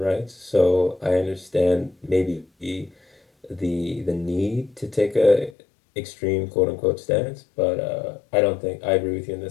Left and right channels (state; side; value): drops out; right; at 5.6 s